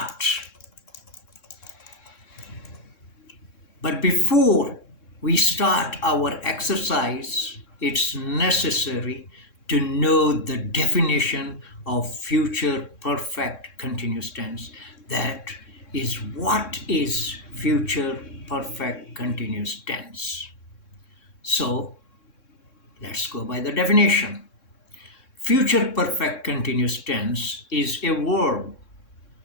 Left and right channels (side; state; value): right; late; 3.6 ms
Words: our exercise, it's necessary to know the definition of future perfect continuous tense. That is, what is future perfect continuous tense? So let's go by the definition. Future perfect continuous tense is a